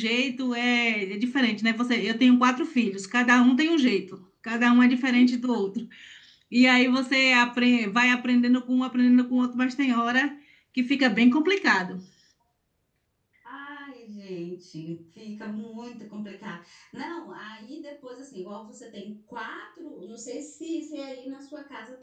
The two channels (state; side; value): identical; both; correlation 1.00